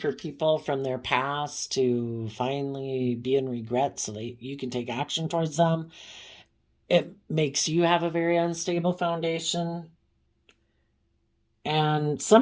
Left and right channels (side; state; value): both; identical; correlation 1.00